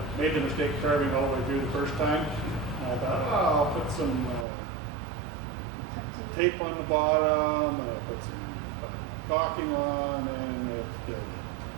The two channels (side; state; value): left; drops out; at 4.5 s